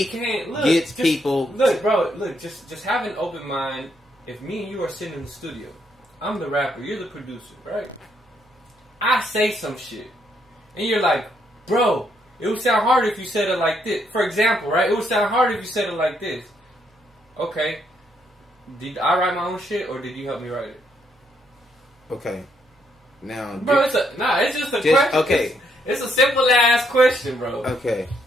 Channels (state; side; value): normal; both; correlation 0.74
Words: gets people. Look, bro. Look, just have an open mind. If me and you are sitting in the studio, I'm the rapper, you're the producer, right? I say some shit, and you're like, bro, it would sound harder if you said it like this. For example, right? It would sound harder if you said it like this. Okay. Did I write my own shit, or did you help me write it? Okay. Now, bro, it's just a question. Okay. It's a simple ass question, bro. Okay.